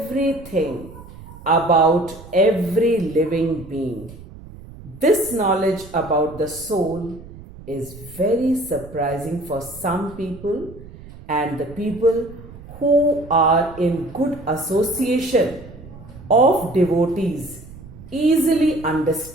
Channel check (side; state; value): right; noise; rumble, 17 dB below the sound